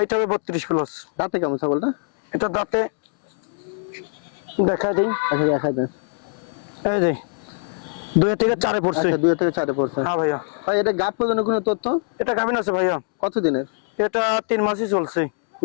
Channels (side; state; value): right; silent; digital silence